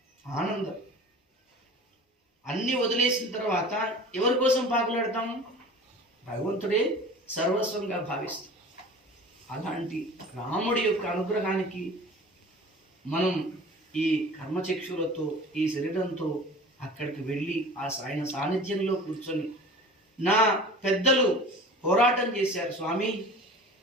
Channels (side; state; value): both; normal; correlation 0.41